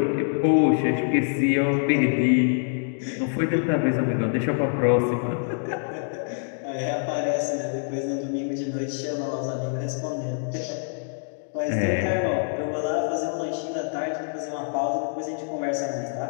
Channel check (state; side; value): silent; right; 61 dB below the other